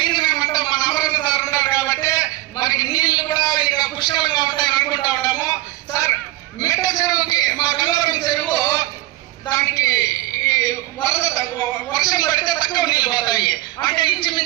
ఏమంటే మన అమరావతి సార్ ఉన్నారు కాబట్టి మనకి నీళ్లు కూడా ఇంకా పుష్కలంగా ఉంటాయని అనుకుంటా ఉంటాము సార్. మిట్ట చెరువుకి మా గంగవరం చెరువు దానికి వర్షం పడితే తక్కువ నీళ్లు పోతాయి. అంటే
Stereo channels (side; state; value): left; quieter; 17.7 dB